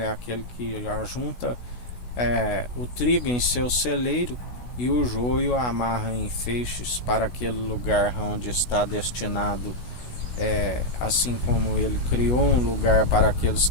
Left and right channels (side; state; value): right; late; 16 ms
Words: é aquele que ajunta o trigo em seu celeiro e o joio amarra em feixes para aquele lugar onde está destinado. Assim como ele criou um lugar para aqueles